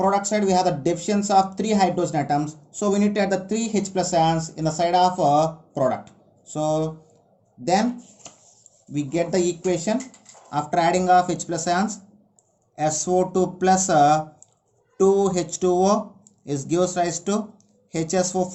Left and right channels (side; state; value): both; identical; correlation 1.00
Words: side we have the deficiency of 3 hydrogen atoms, so we need to add the 3 H plus ions in the side of product. So then we get the equation after adding of H plus ions, SO2 plus 2H2O is gives rise to